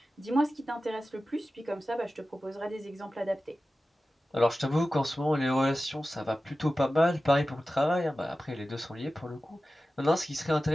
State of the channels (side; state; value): both; normal; correlation 0.95